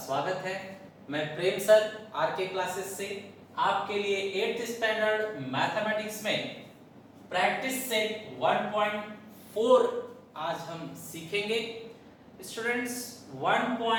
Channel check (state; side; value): identical; both; correlation 1.00